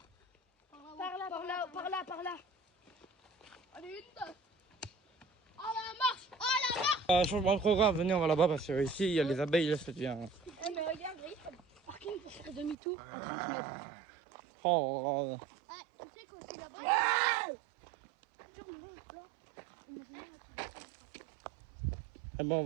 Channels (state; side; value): drops out; left; at 12.8 s